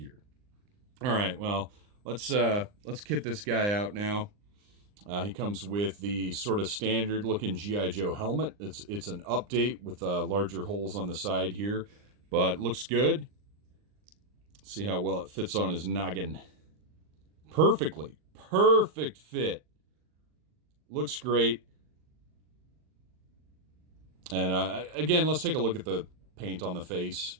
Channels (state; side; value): late; left; 39 ms